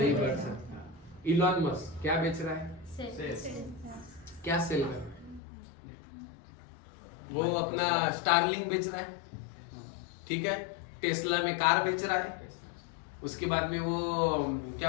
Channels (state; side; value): drops out; right; at 5.4 s